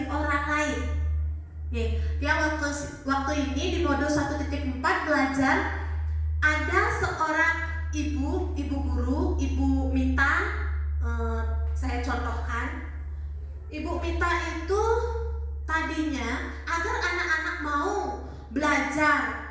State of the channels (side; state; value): both; identical; correlation 1.00